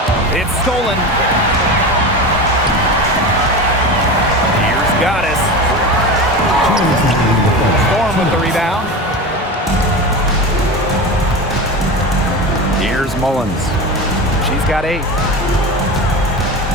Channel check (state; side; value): normal; both; correlation 0.26